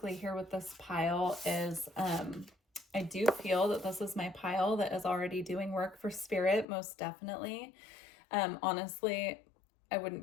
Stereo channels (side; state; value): right; drops out; at 6.7 s